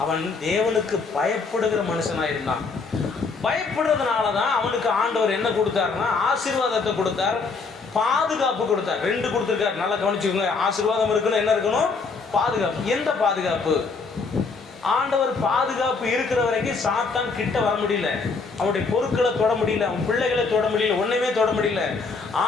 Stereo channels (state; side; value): quieter; right; 4.5 dB